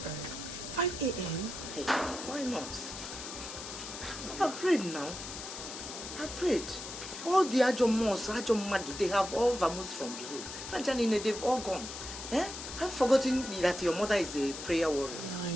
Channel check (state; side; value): noise; left; hiss, 9 dB below the sound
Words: early. 5 a.m.? Hey, why not? I've prayed now. I've prayed. All the Ajomos, Ajomadu, they have all vamoosed from the road. Franjanine, they've all gone. Eh? I've forgotten that your mother is a prayer warrior. Yeah, I